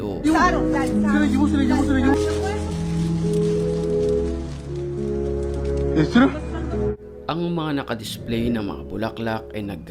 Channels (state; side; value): identical; both; correlation 1.00